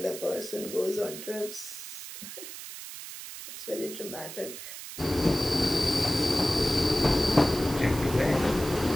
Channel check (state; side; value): noise; right; hiss, 11 dB below the sound